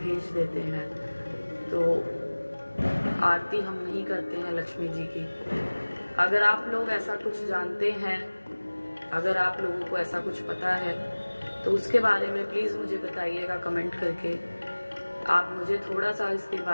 देते हैं, तो आरती हम नहीं करते हैं लक्ष्मी जी की। अगर आप लोग ऐसा कुछ जानते हैं, अगर आप लोगों को ऐसा कुछ पता है तो उसके बारे में प्लीज़ मुझे बताइएगा कमेंट करके। आप मुझे थोड़ा सा इसके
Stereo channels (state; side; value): inverted; both; correlation -1.00